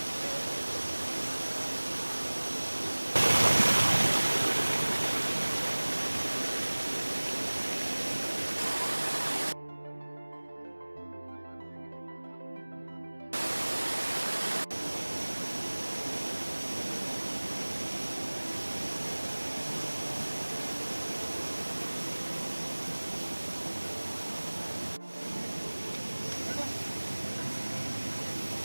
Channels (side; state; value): both; inverted; correlation -1.00